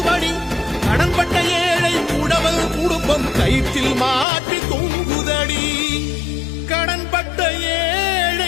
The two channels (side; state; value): right; drops out; at 4.2 s